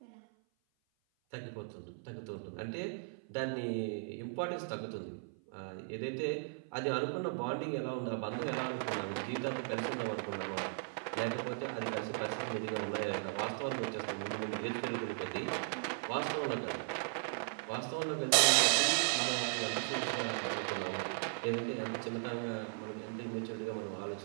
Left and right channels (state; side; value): silent; left; 53 dB below the other